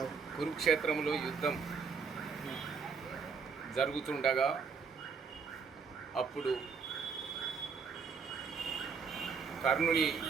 కురుక్షేత్రంలో యుద్ధం జరుగుతుండగా అప్పుడు కర్ణుని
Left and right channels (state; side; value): quieter; left; 5.5 dB